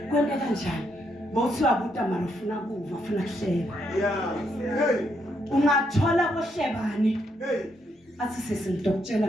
kwente kanjani? Bothiwa buta mara ufuna kuva, ufuna kuhleba. Ungathola kohlebani. Athi sisi ngidokutshela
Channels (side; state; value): both; normal; correlation 0.77